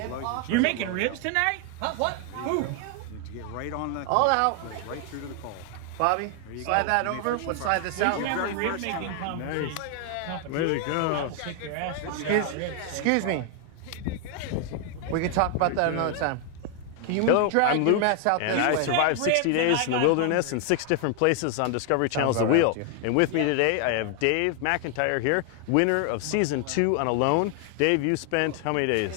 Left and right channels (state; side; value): different; both; correlation 0.00